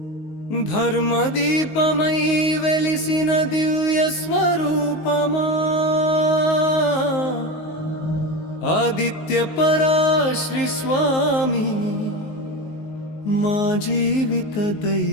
ధర్మదీపమై వెలిసిన దివ్య స్వరూపమా, ఆదిత్య పరాశ్రీ స్వామి మా జీవిత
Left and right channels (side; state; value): right; late; 19 ms